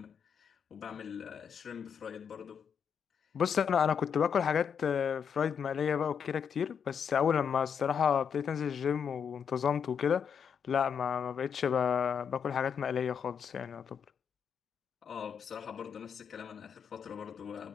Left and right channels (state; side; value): quieter; right; 7.2 dB